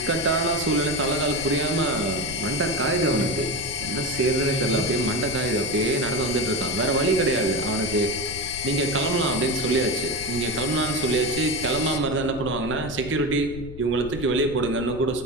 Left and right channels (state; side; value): noise; left; rumble, 13 dB below the sound